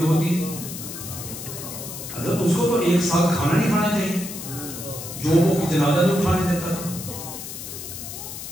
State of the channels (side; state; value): left; noise; hiss, 9 dB below the sound